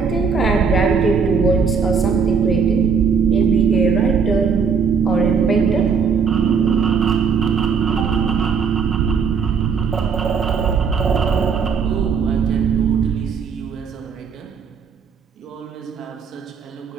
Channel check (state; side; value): quieter; left; 5.9 dB